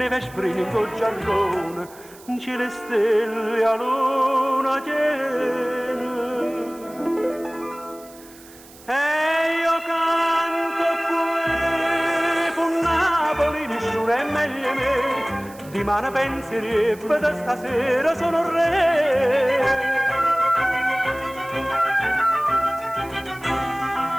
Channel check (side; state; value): right; noise; hiss, 22 dB below the sound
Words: sprina in col giarrone, in cielo e stelle a luna piena. E io canto qui, con Napoli nessuno è meglio me, di mano penserebbe da stasera sono re.